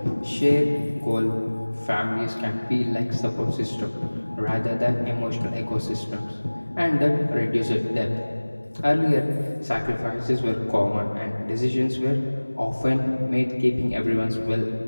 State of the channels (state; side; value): inverted; both; correlation -1.00